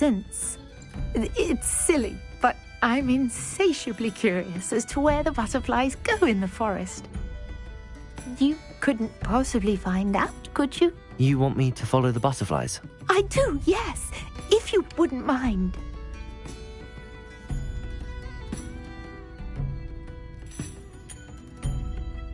It's silly, but I'm insatiably curious as to where the butterflies go in the forest. You couldn't possibly find out, could you? You want me to follow the butterflies? I do, yes, if you wouldn't mind.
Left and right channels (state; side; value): identical; both; correlation 1.00